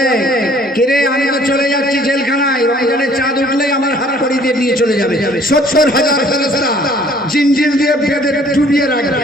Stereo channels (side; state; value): both; normal; correlation 0.57